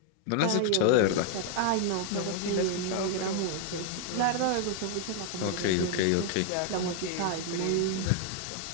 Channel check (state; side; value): different; both; correlation 0.00